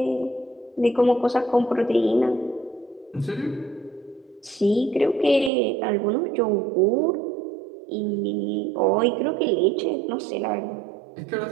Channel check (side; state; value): left; drops out; at 5.5 s